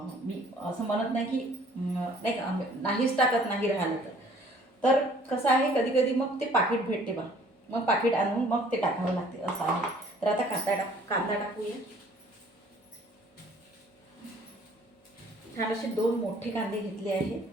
मी असं म्हणत नाही की नाही का नाहीच टाकत नाही राहिलं तर कसं आहे कधी कधी मग ते पाकिट भेटते बा, मग पाकिट आणून मग ते टाकावं लागते असं आहे. तर आता कांदा टाकूया. छान असे 2 मोठे कांदे घेतले आहे.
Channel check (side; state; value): both; normal; correlation 0.56